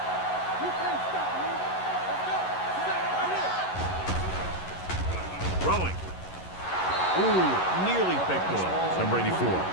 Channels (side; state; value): right; late; 11 ms